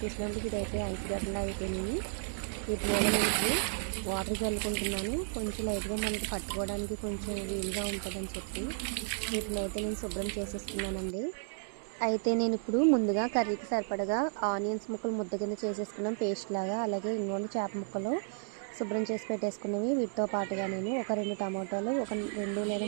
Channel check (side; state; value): left; silent; digital silence